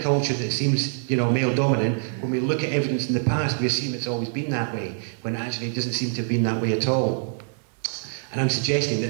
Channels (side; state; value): left; silent; digital silence